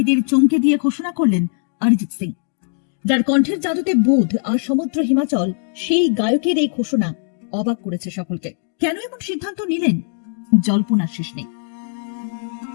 চমকে দিয়ে ঘোষণা করলেন অরিজিৎ সিং। যার কণ্ঠের জাদুতে বুধ আর সমুদ্র হিমাচল, সেই গায়কের এই ঘোষণা অবাক করেছে সকলকে। কেন এমন সিদ্ধান্ত নিলেন, জল্পনার শেষ নেই।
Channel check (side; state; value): right; silent; digital silence